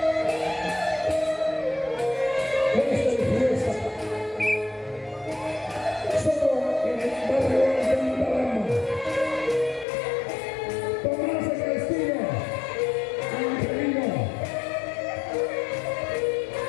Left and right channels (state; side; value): drops out; right; at 9.9 s